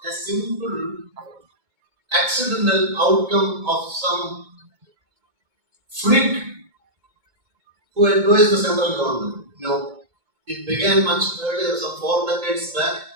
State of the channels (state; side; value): late; left; 2.3 ms